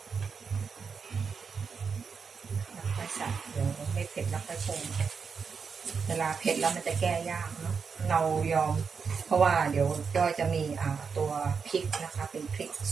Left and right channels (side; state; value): left; quieter; 5.7 dB